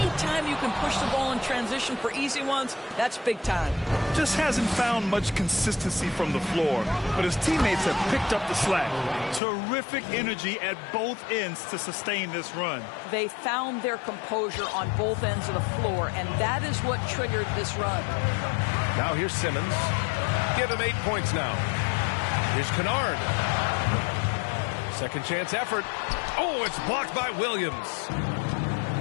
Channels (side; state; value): right; drops out; at 9.4 s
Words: you can push the ball in transition for easy ones, that's big time. Just hasn't found much consistency from the floor, but his teammates have picked up the slack. Terrific energy at both ends to sustain this run. They found their composure on both ends of the floor, and that is what triggered this run. Now here's Simmons. Give him 8 points now. Here's Kennard. Second chance effort. Oh, it's blocked by Williams.